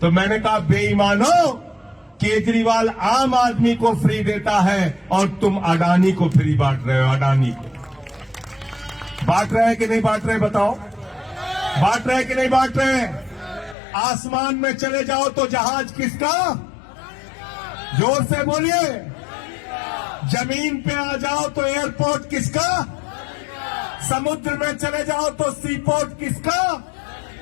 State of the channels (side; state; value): right; drops out; at 13.8 s